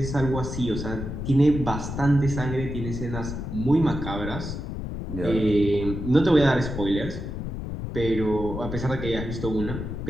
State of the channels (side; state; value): left; noise; rumble, 6 dB below the sound